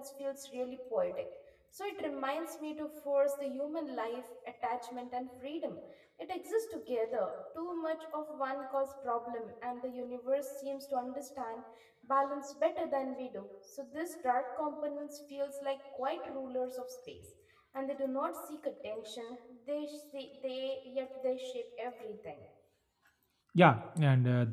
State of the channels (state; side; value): identical; both; correlation 1.00